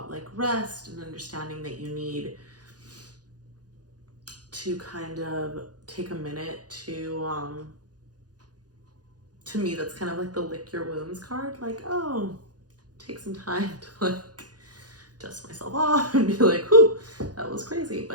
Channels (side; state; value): left; late; 0.69 ms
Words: like rest and understanding that you need to kind of take a minute to me, that's kind of like the lick your wounds card. Like, oh, take some time to like dust myself off and be like, whew, that was crazy,